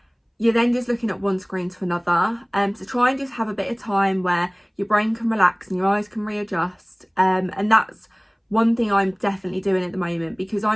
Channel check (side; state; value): both; identical; correlation 1.00